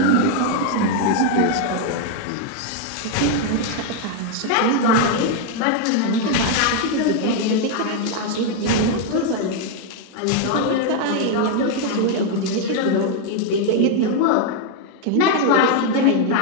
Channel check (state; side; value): different; both; correlation 0.00